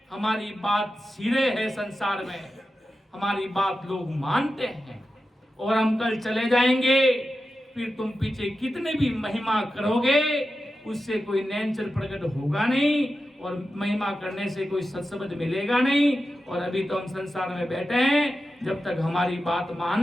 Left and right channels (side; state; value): both; normal; correlation 0.92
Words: हमारी बात सिरे है संसार में, हमारी बात लोग मानते हैं और हम कल चले जाएंगे। फिर तुम पीछे कितने भी महिमा करोगे उससे कोई नैनचर प्रकट होगा नहीं और महिमा करने से कोई सत्सबद मिलेगा नहीं। और अभी तो हम संसार में बैठे हैं, जब तक हमारी बात